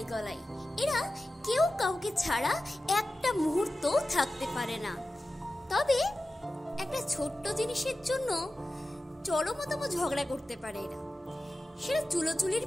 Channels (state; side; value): normal; both; correlation 0.94